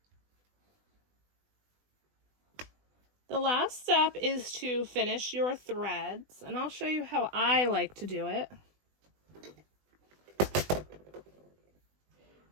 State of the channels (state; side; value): late; left; 20 ms